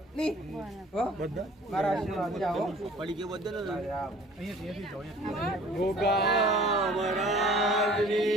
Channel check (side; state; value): both; normal; correlation 0.50